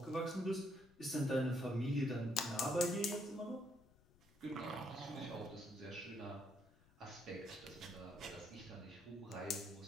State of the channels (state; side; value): noise; left; rumble, 27 dB below the sound